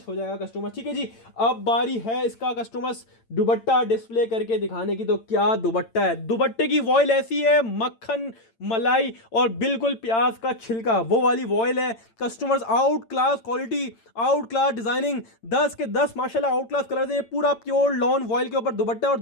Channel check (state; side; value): late; right; 8.9 ms